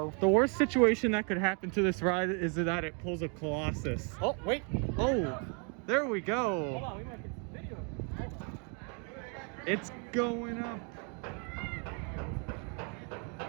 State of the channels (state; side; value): quieter; left; 37.5 dB